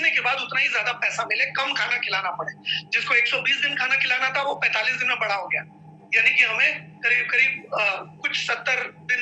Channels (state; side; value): identical; both; correlation 1.00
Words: के बाद उतना ही ज्यादा पैसा मिले, कम खाना खिलाना पड़े। जिसको 120 दिन खाना खिलाना था वो 45 दिन में बड़ा हो गया, यानी कि हमें करीब करीब कुछ